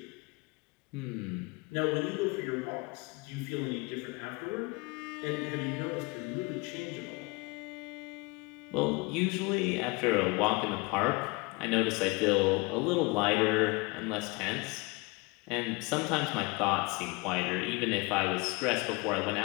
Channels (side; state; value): right; quieter; 26.6 dB